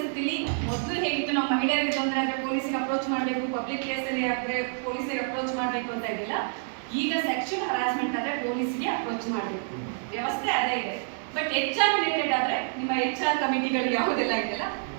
ಮೊದಲು ಹೇಗಿತ್ತು, ನಾವು ಮಹಿಳೆಯರಿಗೆ ತೊಂದರೆ ಆದರೆ ಪೊಲೀಸಿಗೆ ಅಪ್ರೋಚ್ ಮಾಡಬೇಕು, ಪಬ್ಲಿಕ್ ಪ್ಲೇಸಲ್ಲಿ ಆದರೆ ಪೊಲೀಸಿಗೆ ಅಪ್ರೋಚ್ ಮಾಡಬೇಕು ಅಂತ ಇದ್ದಿಲ್ಲ. ಈಗ ಸೆಕ್ಷುಯಲ್ ಹರಾಸ್ಮೆಂಟ್ ಆದರೆ ಪೊಲೀಸ್ಗೆ ಅಪ್ರೋಚ್ ಮಾಡಬೇಕು, ವ್ಯವಸ್ಥೆ ಅದೇ ಇದೆ. ಬಟ್ HR ರಿಲೇಟೆಡ್ ಆದರೆ ನಿಮ್ಮ HR ಕಮಿಟಿಗಳು ಯಾವುದೆಲ್ಲ ಇದೆಯಲ್ಲ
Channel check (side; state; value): left; silent; digital silence